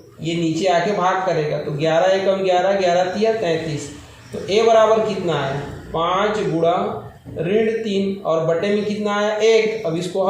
नीचे आके भाग करेगा। तो 11 एकम 11, 11 तिया 33। तो ए बराबर कितना आया, 5 गुणा ऋण 3, और बटे में कितना आया 1। अब इसको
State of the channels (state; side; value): identical; both; correlation 1.00